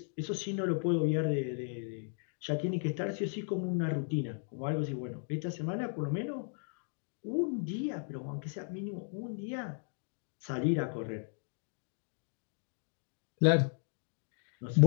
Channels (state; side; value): silent; right; 54 dB below the other